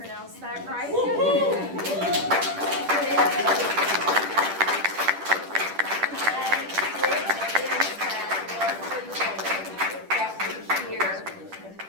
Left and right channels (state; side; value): late; left; 10 ms